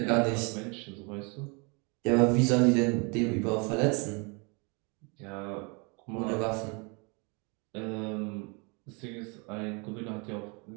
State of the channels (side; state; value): left; quieter; 31.8 dB